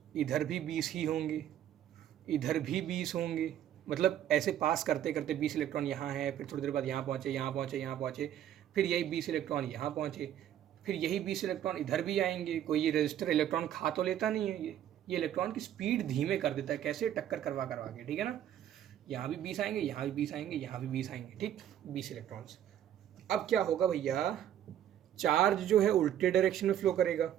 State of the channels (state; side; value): quieter; left; 10.9 dB